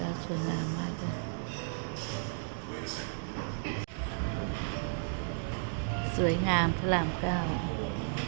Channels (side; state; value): left; silent; digital silence